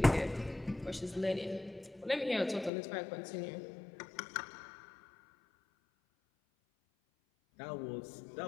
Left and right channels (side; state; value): right; drops out; at 2.7 s